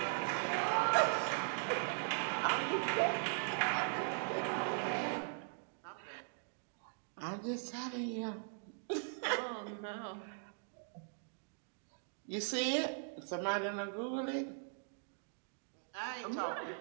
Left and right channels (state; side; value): silent; left; digital silence